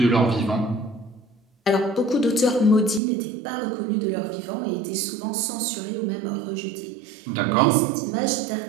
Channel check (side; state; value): left; drops out; at 3.0 s